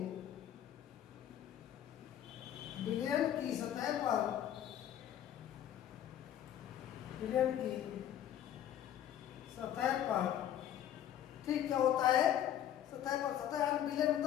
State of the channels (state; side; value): quieter; right; 10.9 dB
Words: पर ठीक क्या होता है, सतह यानी विलयन